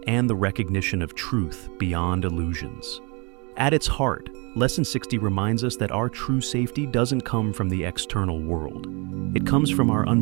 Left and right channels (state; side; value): quieter; left; 31.3 dB